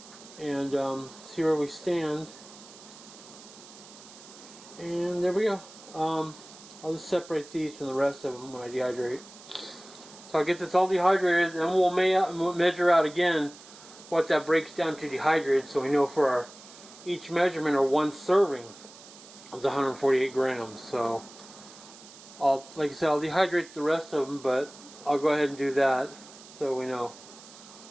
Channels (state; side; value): noise; right; hiss, 19 dB below the sound